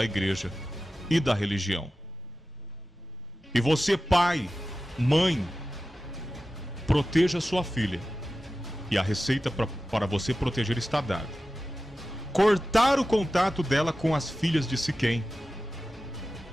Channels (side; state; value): both; normal; correlation 0.94